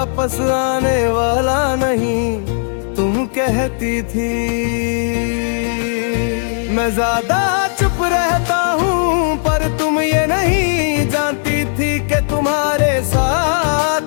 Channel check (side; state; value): right; silent; digital silence